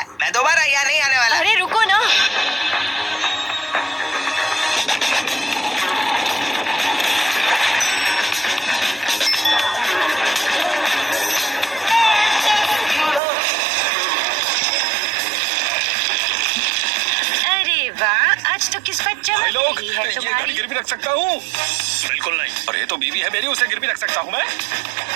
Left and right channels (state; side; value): drops out; left; at 13.2 s